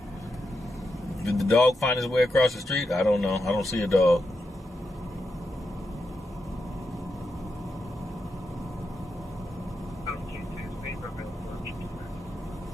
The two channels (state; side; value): normal; both; correlation 0.85